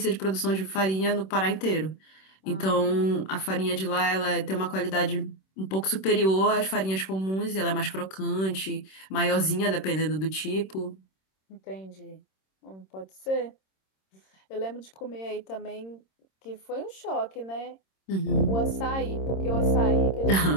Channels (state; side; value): late; right; 26 ms